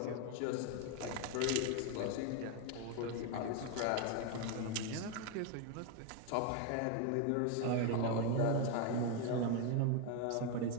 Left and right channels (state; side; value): different; both; correlation 0.01